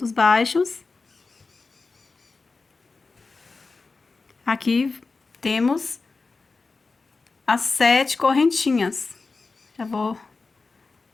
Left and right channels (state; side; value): quieter; right; 4.0 dB